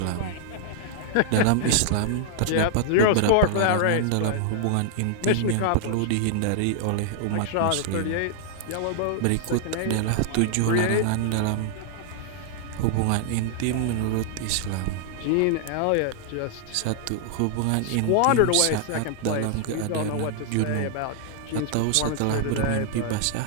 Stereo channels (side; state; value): both; different; correlation 0.00